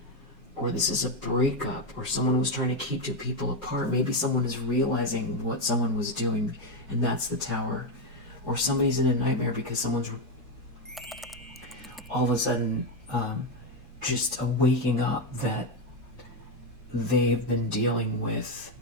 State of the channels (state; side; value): normal; both; correlation 0.07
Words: Or this is a breakup, or someone was trying to keep two people apart. Maybe someone is realizing what someone was doing, and that's the Tower. Or somebody's in a nightmare because someone's all of a sudden just waking up that they've been dealing with